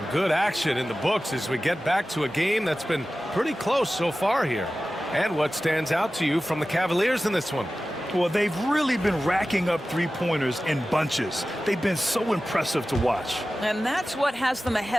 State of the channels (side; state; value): both; normal; correlation 0.95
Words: good action in the books as we get back to a game that's been pretty close so far here. And what stands out to you from the Cavaliers in this one? Well, they've really been racking up 3-pointers in bunches. They've been so impressive to watch. And that's what has them